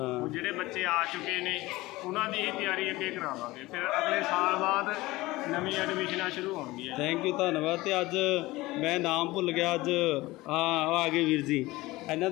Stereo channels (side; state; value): right; quieter; 19.6 dB